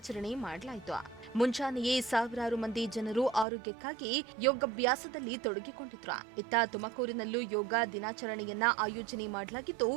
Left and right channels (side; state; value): left; drops out; at 3.5 s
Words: ಮಾಡಲಾಯಿತು. ಮುಂಜಾನೆಯೇ ಸಾವಿರಾರು ಮಂದಿ ಜನರು ಆರೋಗ್ಯಕ್ಕಾಗಿ ಯೋಗಾಭ್ಯಾಸದಲ್ಲಿ ತೊಡಗಿಕೊಂಡಿದ್ರು. ಇತ್ತ ತುಮಕೂರಿನಲ್ಲೂ ಯೋಗ ದಿನಾಚರಣೆಯನ್ನ ಆಯೋಜನೆ ಮಾಡಲಾಗಿದ್ದು,